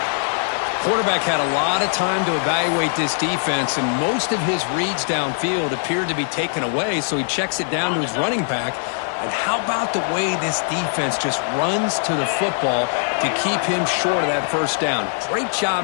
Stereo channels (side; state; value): right; silent; 63 dB below the other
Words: Quarterback had a lot of time to evaluate this defense, and most of his reads downfield appeared to be taken away, so he checks it down to his running back. And how about the way this defense just runs to the football to keep him short of that first down? Great